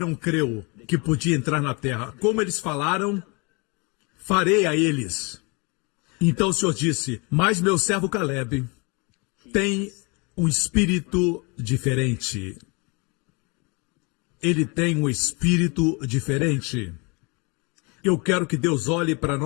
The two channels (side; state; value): right; quieter; 30.4 dB